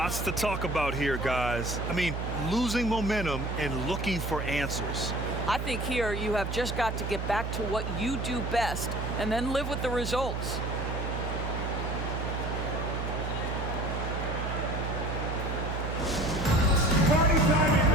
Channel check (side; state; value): right; noise; hum, 3 dB below the sound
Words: to talk about here, guys. I mean, losing momentum and looking for answers. I think here you have just got to get back to what you do best and then live with the results. Party time in